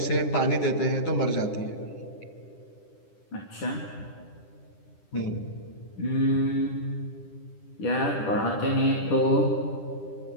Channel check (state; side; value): late; right; 10 ms